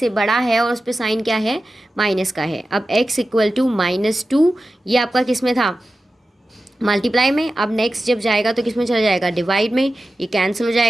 बड़ा है और उस पर साइन क्या है, माइनस का है। अब x इक्वल टू -2, ये आपका किस में था, मल्टीप्लाई में। अब नेक्स्ट जब जाएगा तो किस में चला जाएगा, डिवाइड में, ये कैंसिल हो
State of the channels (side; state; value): both; normal; correlation 0.94